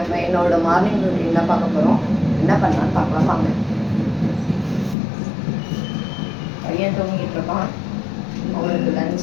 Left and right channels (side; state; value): right; drops out; at 5.0 s